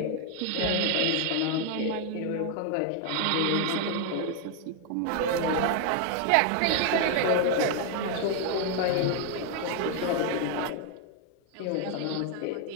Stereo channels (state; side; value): different; both; correlation 0.00